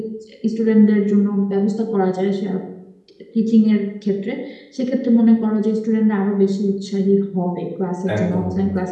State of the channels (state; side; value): identical; both; correlation 1.00